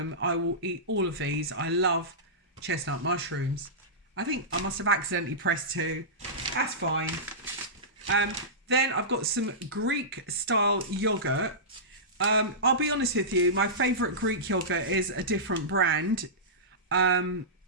I will eat all of these. I love chestnut mushrooms. I think I must have accidentally pressed 2. That's fine. Then I've got some Greek style yogurt. I'll be honest with you, my favourite Greek yogurt is a different brand,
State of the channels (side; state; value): both; normal; correlation -0.17